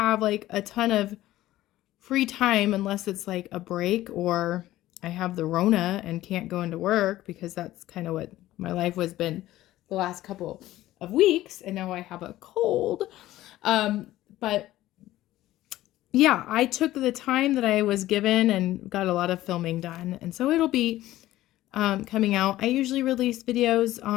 a ton of free time unless it's a break or I have the Rona and can't go into work, because that's kind of what my life has been the last couple of weeks. And now I have a cold. But yeah, I took the time that I was given and got a lot of filming done. And so it'll be coming out. I usually release videos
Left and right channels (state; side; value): quieter; right; 15.3 dB